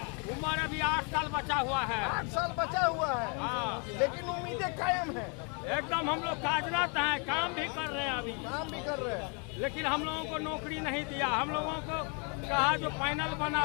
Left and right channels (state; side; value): quieter; right; 35.9 dB